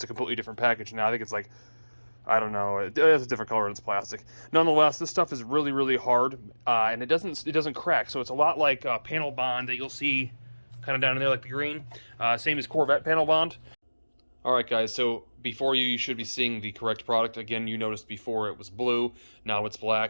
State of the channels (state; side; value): inverted; both; correlation -1.00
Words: a completely different package now. I think it's like, I don't know, it has a different color and it's plastic. Nonetheless, this stuff is really, really hard, and it doesn't crack. So it's a lot like panel bond that you'll see kind of down in there, like the green. Same as Corvette panel bond. All right, guys, so before you should be seeing the correct product. Again, you noticed before it was blue, now it's